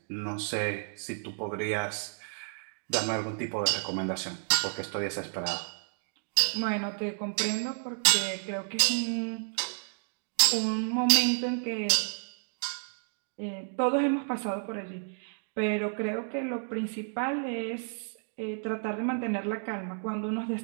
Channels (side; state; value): left; silent; digital silence